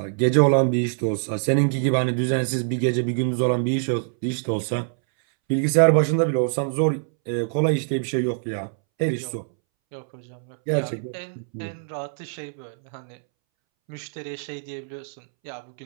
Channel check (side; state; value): left; silent; 63 dB below the other